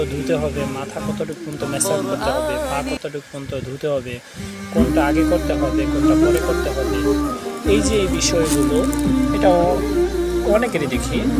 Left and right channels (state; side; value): identical; both; correlation 1.00